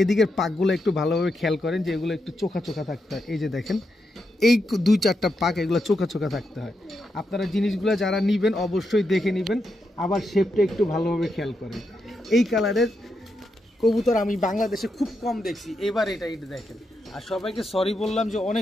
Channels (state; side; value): normal; both; correlation 0.84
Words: এদিকের পাকগুলো একটু ভালোভাবে খেয়াল করেন, যে এগুলো একটু চোখা চোখা থাকতে হয়। এই যে দেখেন, এই 2-4টা পাক এগুলো চোখা চোখা থাকতে হয়। আপনারা জিনিসগুলো যারা নেবেন অবশ্যই দেখে নেবেন, আবার শেপটা একটু ভালোভাবে খেয়াল করেন। এই কালারের কবুতর আমি বাংলাদেশে খুব কম দেখছি, এবার এটা দেখেন। আর সবাইকে সরি বললাম যে